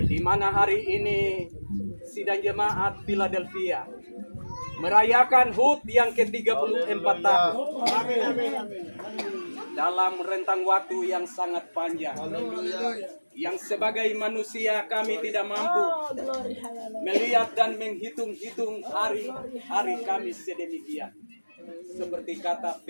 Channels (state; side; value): inverted; both; correlation -1.00